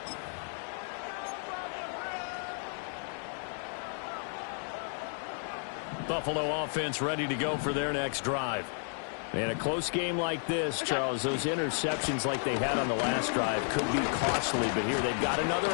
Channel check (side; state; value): right; silent; 56 dB below the other